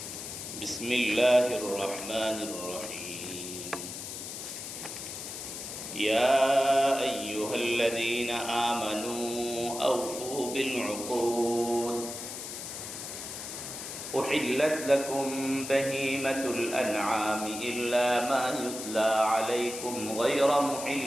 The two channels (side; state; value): left; noise; hiss, 8 dB below the sound